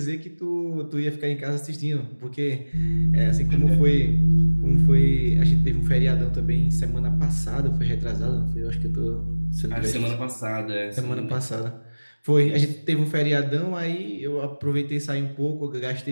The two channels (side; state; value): both; inverted; correlation -1.00